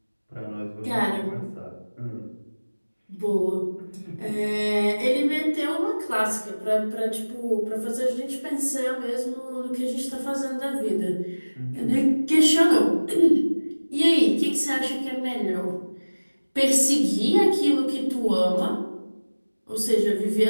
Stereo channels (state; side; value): inverted; both; correlation -1.00